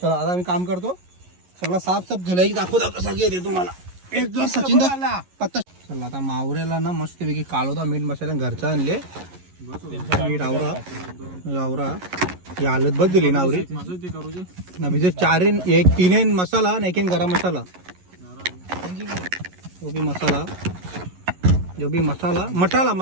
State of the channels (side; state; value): left; late; 11 ms